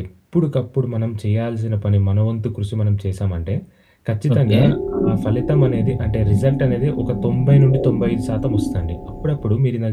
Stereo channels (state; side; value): identical; both; correlation 1.00